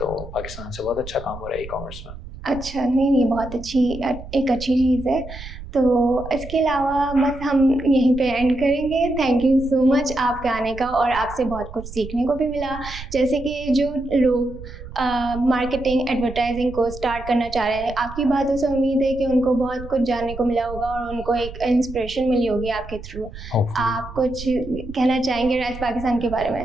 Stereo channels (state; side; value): noise; right; rumble, 13 dB below the sound